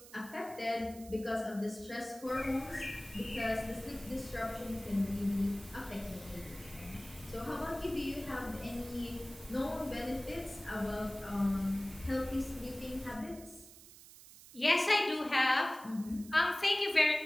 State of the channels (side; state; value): right; noise; hiss, 19 dB below the sound